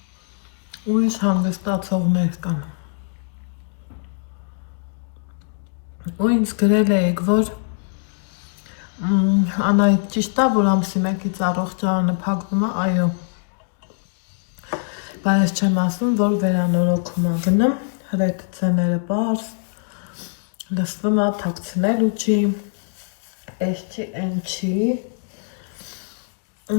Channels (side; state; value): right; silent; digital silence